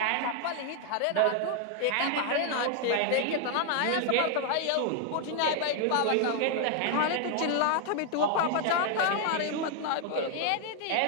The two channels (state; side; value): different; both; correlation 0.00